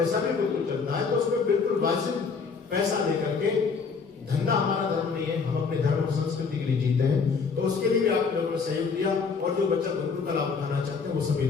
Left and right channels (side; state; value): right; quieter; 5.2 dB